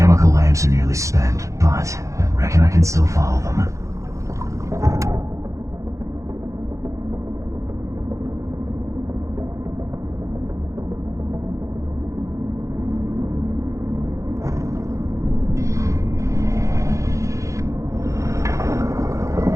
lamps are nearly spent, but I reckon I can still follow them.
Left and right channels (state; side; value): late; left; 0.15 ms